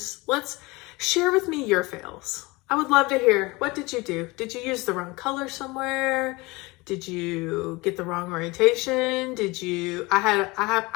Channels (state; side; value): quieter; right; 23.5 dB